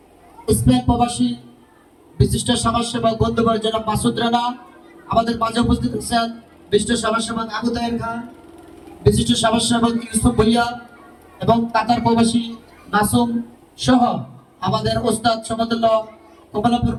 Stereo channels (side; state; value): both; identical; correlation 1.00